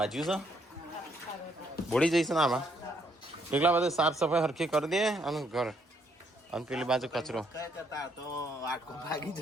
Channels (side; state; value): both; normal; correlation 0.71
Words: જ્યું છે બોડી જઈશ ને આમાં એટલા બધા સાફ સફાઈ હરખી કરી દે અને ઘર અને પેલી બાજુ કચરો